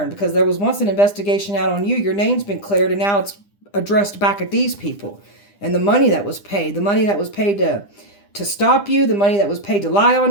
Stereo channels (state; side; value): late; right; 9.9 ms